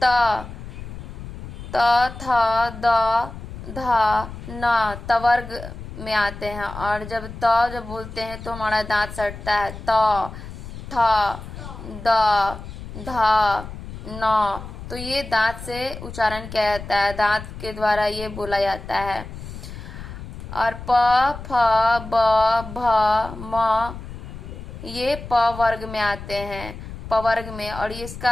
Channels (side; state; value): left; noise; rumble, 11 dB below the sound